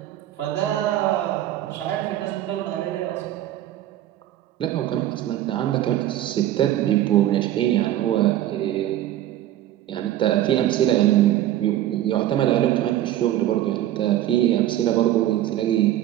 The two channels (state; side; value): quieter; left; 13.1 dB